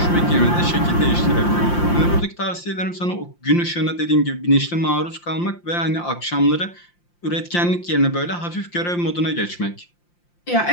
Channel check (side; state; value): right; late; 5.8 ms